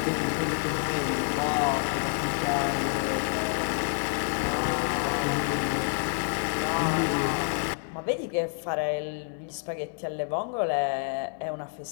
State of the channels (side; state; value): right; silent; 59 dB below the other